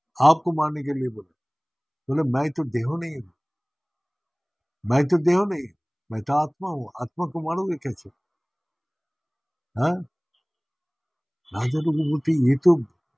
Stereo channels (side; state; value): both; identical; correlation 1.00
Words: आपको मारने के लिए बोला। बोले मैं तो देहो नहीं हूँ, मैं तो देहो नहीं, मैं तो आत्मा हूँ, आत्मा को मारोगे कैसे। हाँ, राजा लोग बोलते ये